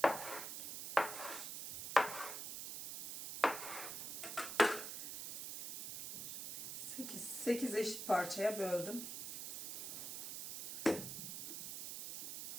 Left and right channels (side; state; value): right; noise; hiss, 6 dB below the sound